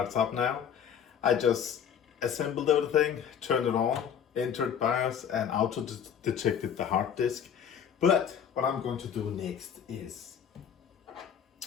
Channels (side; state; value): right; quieter; 8.2 dB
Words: up now. I just assembled everything, turned it on, entered BIOS, and auto detected the hard disk. But what I'm going to do next is